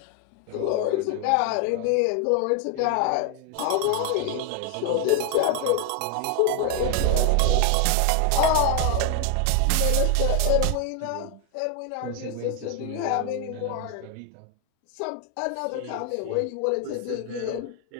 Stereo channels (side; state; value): both; different; correlation 0.00